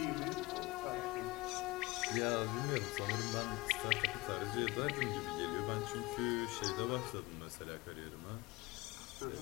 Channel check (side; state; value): right; quieter; 22.5 dB